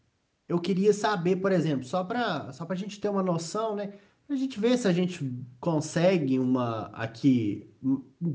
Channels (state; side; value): identical; both; correlation 1.00